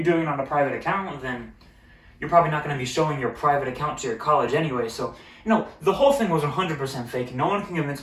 doing it on a private account, then you're probably not going to be showing your private account to your college anyway. So, the whole thing was 100% fake. No one can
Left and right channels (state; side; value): identical; both; correlation 1.00